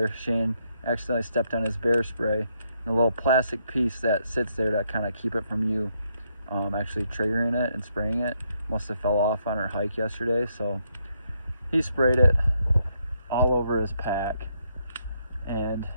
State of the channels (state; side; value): inverted; both; correlation -0.76